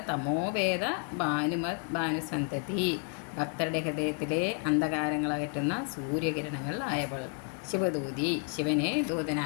തമോവേദ ഭാനുമത് ഭാനുസന്തതി. ഭക്തരുടെ ഹൃദയത്തിലെ അന്ധകാരങ്ങളകറ്റുന്ന സൂര്യകിരണങ്ങളായവൾ. ശിവദൂതി ശിവനെ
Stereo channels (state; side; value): quieter; right; 39.4 dB